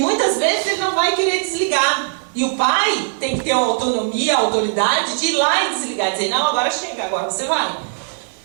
vezes ele não vai querer desligar. E o pai tem que ter a autonomia, a autoridade de ir lá e desligar, dizer, não, agora chega, agora você vai.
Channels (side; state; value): left; silent; digital silence